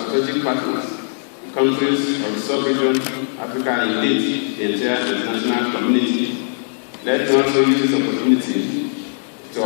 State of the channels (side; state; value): right; silent; digital silence